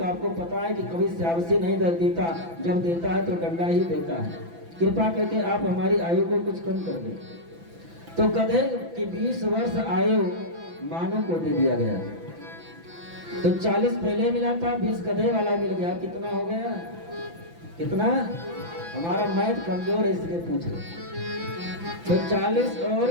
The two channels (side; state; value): left; late; 6.0 ms